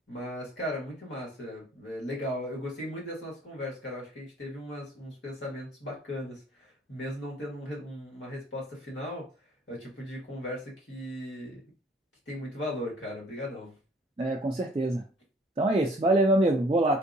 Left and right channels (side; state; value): both; normal; correlation 0.56